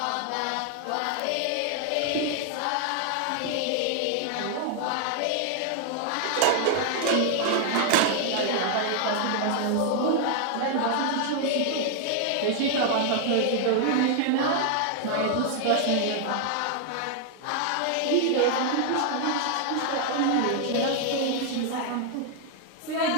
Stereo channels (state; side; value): different; both; correlation 0.00